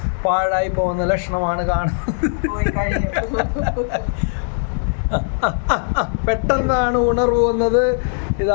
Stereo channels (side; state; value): right; silent; digital silence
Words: പാഴായി പോകുന്ന ലക്ഷണമാണ് കാണുന്നത്. പെട്ടെന്നാണ് ഉണർവ് വന്നത്.